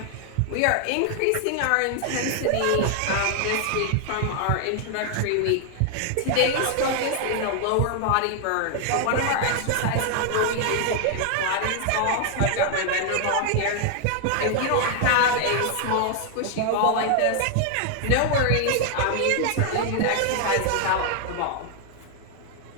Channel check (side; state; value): both; different; correlation 0.00